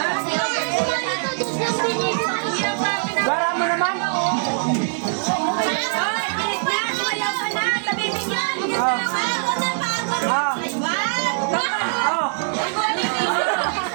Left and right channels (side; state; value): left; silent; digital silence